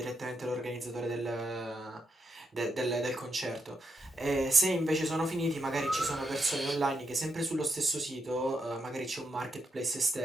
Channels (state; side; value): normal; both; correlation 0.81